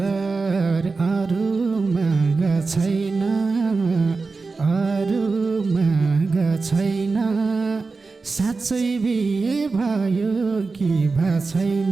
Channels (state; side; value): quieter; left; 4.1 dB